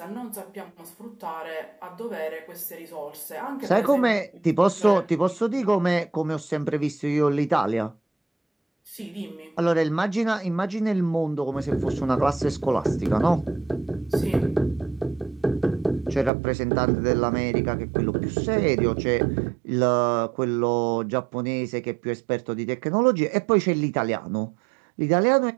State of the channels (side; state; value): left; drops out; at 16.3 s